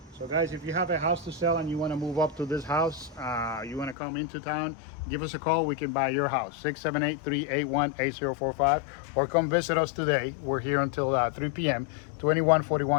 So guys, if you have a house to sell and you want to move up to this house, you want to come into town, give us a call. We can buy your house, 678-381-8045, or come visit us today. We're here until 3 p.m.,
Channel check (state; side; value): drops out; right; at 4.0 s